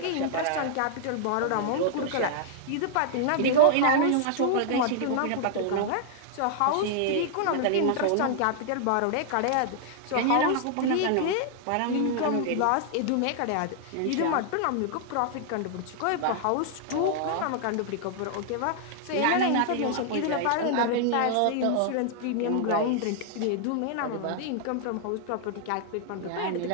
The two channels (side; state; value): both; different; correlation -0.01